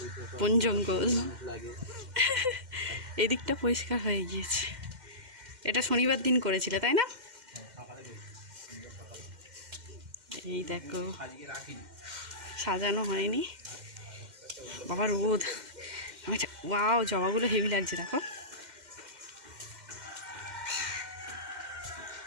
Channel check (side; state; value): left; late; 2.1 ms